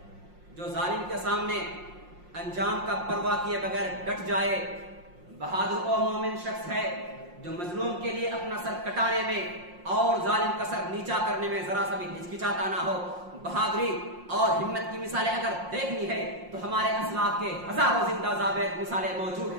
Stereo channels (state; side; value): late; left; 5.6 ms